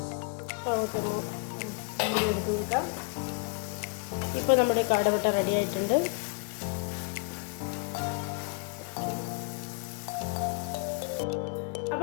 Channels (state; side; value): quieter; right; 35.1 dB